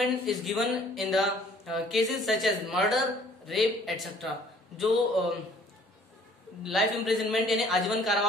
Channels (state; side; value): normal; both; correlation 0.55